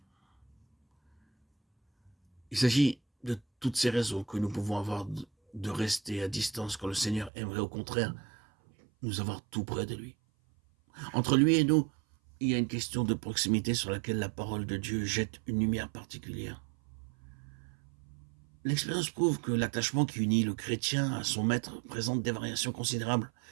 Il s'agit de toutes ces raisons que nous pouvons avoir de rester à distance quand le Seigneur aimerait au contraire nous avoir tout près de lui. Entre lui et nous, il y a une question de proximité sur laquelle la parole de Dieu jette une lumière particulière. L'expérience prouve que l'attachement qui unit le chrétien à son maître présente des variations considérables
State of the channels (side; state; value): left; drops out; at 7.3 s